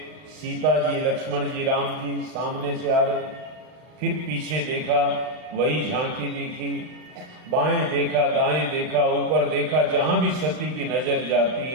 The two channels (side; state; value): left; late; 39 ms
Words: सीता जी, लक्ष्मण जी, राम जी सामने से आ रहे। फिर पीछे देखा, वही झांकी दिखी, बाएं देखा, दाएं देखा, ऊपर देखा, जहां भी सती की नजर जाती